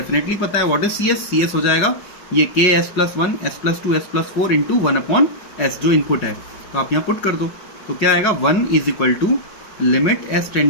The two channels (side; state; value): right; late; 5.4 ms